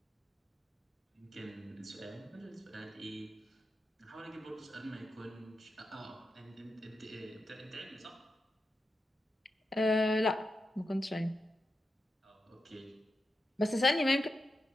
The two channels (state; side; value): normal; both; correlation 0.88